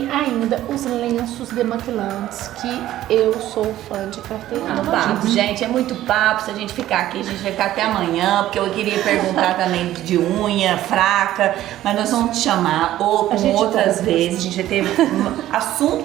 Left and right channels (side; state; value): left; quieter; 13.7 dB